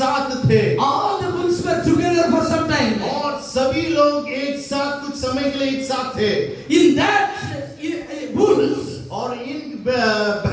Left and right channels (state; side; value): identical; both; correlation 1.00